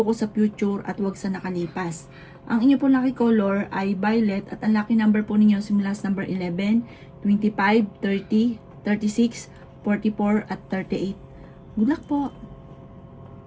sa future at wag sa nakalipas. Ang inyo po lucky color ay violet at ang lucky number po ninyo simula sa number 11, 25, 30, 36, 44 at 38. Good luck po!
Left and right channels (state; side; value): identical; both; correlation 1.00